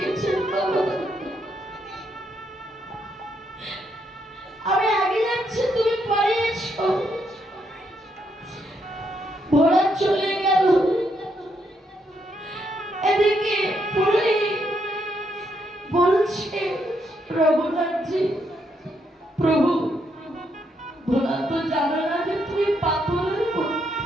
বাবা? আমি আগে যাচ্ছি, তুমি পরে এসো। ভোলা চলে গেল। এদিকে পুরোহিত বলছে, রঘুনাথজি প্রভু, ভোলা তো জানো না যে তুমি পাথরের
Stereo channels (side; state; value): both; normal; correlation 0.77